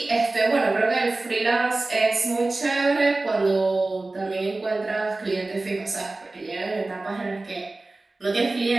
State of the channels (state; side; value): quieter; left; 3.1 dB